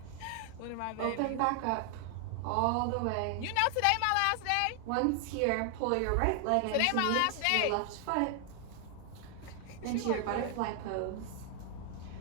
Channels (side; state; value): both; different; correlation 0.00